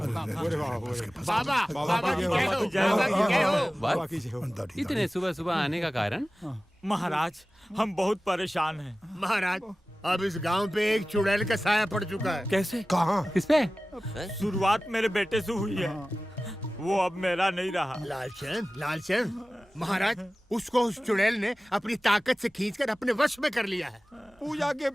बाबा इतने सुबह सुबह आने का कारण? महाराज, हम बहुत परेशान हैं। महाराज, अब इस गांव पे एक चुड़ैल का साया पड़ चुका है। कैसे? कहाँ? किस पे? शुरुआत मेरे बेटे से हुई है, वो अब मेरा नहीं रहा। लालचंद, महाराज, उसको उस चुड़ैल ने अपनी ताकत से खींचकर अपने वश में कर लिया है। पूजा के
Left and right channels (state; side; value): normal; both; correlation 0.97